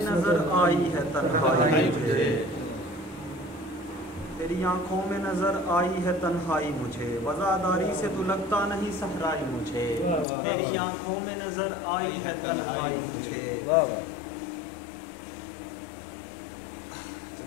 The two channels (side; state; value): right; drops out; at 10.2 s